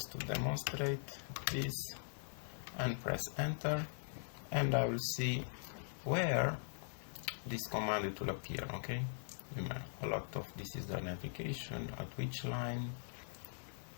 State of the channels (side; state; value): right; silent; 50 dB below the other